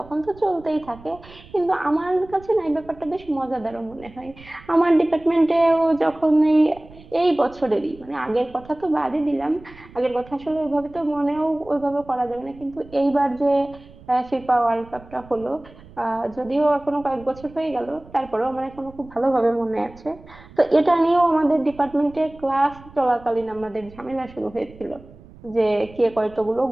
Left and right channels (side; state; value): right; noise; rumble, 21 dB below the sound